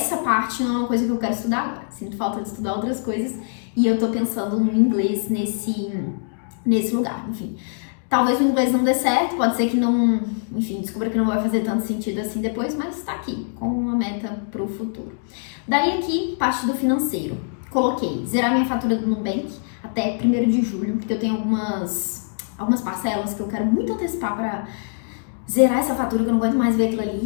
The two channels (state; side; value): silent; right; digital silence